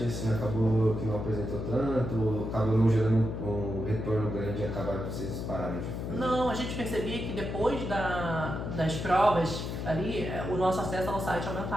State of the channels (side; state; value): left; noise; hum, 4 dB below the sound